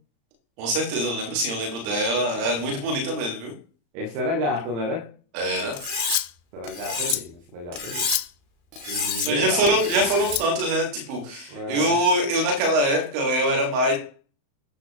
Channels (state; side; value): late; left; 35 ms